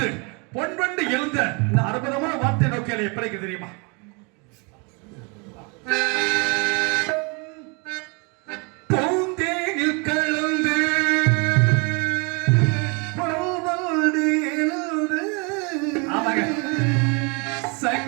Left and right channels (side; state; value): left; quieter; 31.8 dB